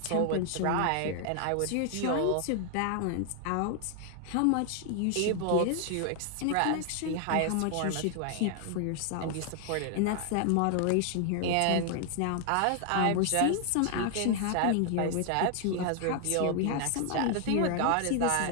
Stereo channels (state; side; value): different; both; correlation 0.00